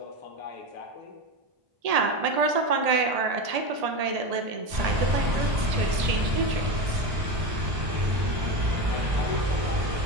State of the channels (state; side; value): late; left; 1.8 ms